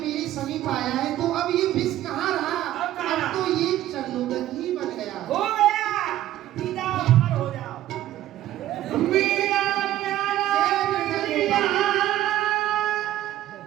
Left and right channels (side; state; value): left; quieter; 13.6 dB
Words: समीप आया है तो अब ये विष कहाँ रहा? अब कहाँ रहा? तो ये चरणों तक ही बन गया। हो गया, पी जाओ, अमर हो जाओ। मीरा प्यारा मीरा।